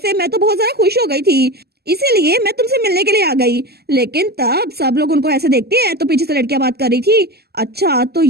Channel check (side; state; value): left; late; 0.46 ms